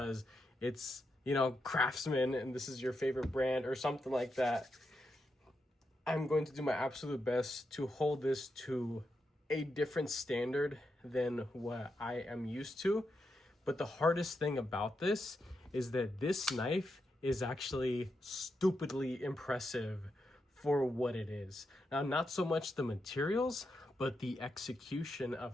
it's, Craftsman and this is your favorite brand or something like that, I'm going to do my absolute best to hold this to a different standard than what I am used to. But the hardest thing about this is that this knife is actually stupidly impressive for what it is. Now, not so much the materials, but the execution of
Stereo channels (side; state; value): both; normal; correlation 0.85